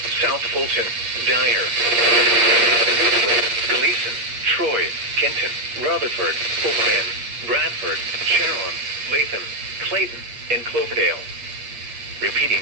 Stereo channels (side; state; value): left; late; 8.5 ms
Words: South Fulton, Dyer, Newfoundland, Gleason, Troy, Kenton, Rutherford, Obion, Bradford, Sharon, Latham, Clayton, and Cloverdale. Repeating,